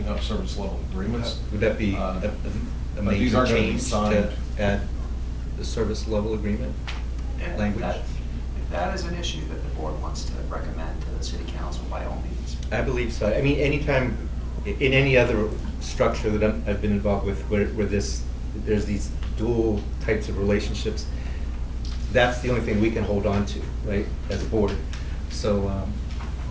up service level agreements. Would that be Uh, a but these major aren't gonna be change to signed. add the service level agreement If language? If that is an issue that the board wants to recommend to the city council, by all means. I believe so. I mean, anytime, in any other structure that I've been involved with where there's these dual types of relationships, that's the only thing we can hold on to, right, as a board. So,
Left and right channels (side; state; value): both; identical; correlation 1.00